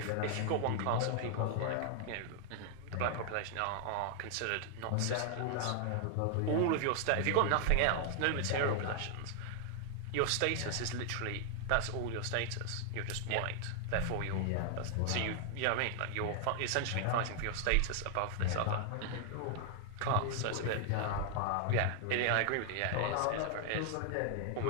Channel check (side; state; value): both; different; correlation 0.00